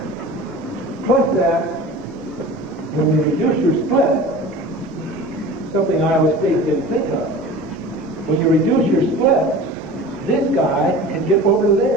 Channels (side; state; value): both; normal; correlation 0.37